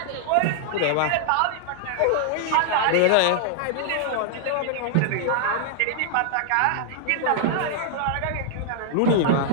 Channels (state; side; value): different; both; correlation -0.01